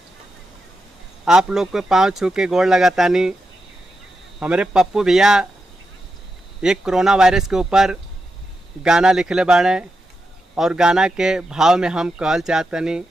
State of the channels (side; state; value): both; normal; correlation 0.87